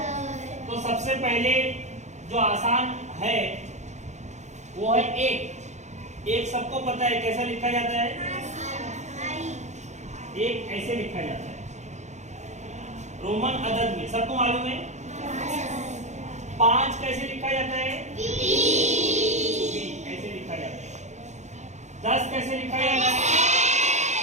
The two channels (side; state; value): left; late; 0.34 ms